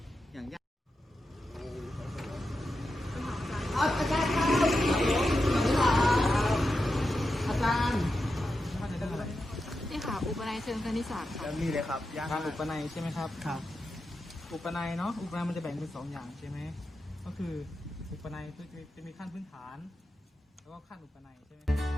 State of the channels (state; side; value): normal; both; correlation 0.89